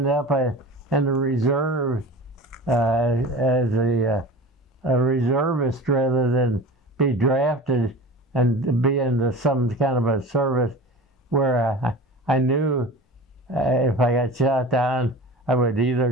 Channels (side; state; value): both; normal; correlation 0.36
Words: up in the reserve as a reservist rather than be drafted and be in some kind of a service where I knew if I got shot down, I would either